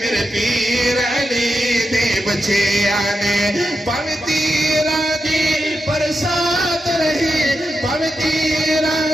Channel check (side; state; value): both; normal; correlation 0.88